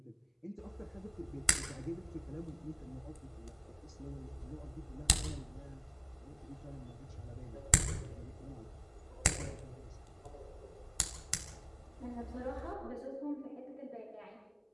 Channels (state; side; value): identical; both; correlation 1.00